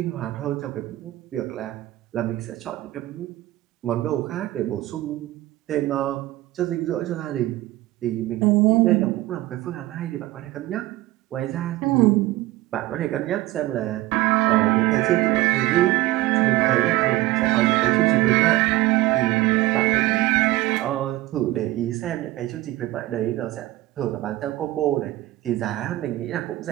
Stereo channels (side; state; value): left; quieter; 17.2 dB